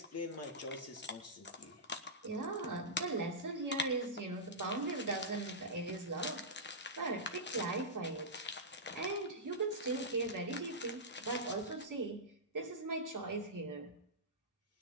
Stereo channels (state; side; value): normal; both; correlation -0.14